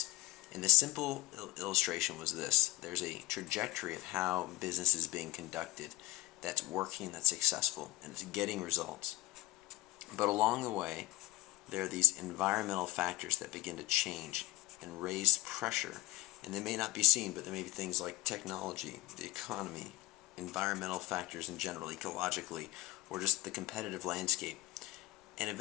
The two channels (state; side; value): quieter; right; 18.1 dB